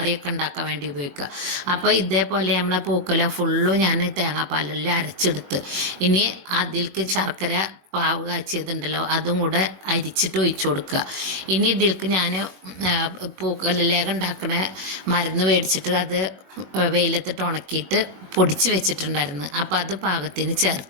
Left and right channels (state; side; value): late; left; 21 ms